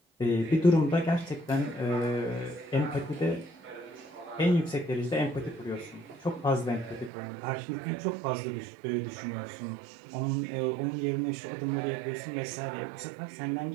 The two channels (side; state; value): left; drops out; at 7.1 s